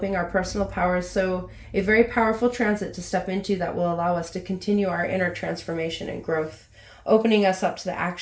our personal powers, so a very powerful transit to step into that will allow us to continue our inner transformation and growth, opening us up to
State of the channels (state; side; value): identical; both; correlation 1.00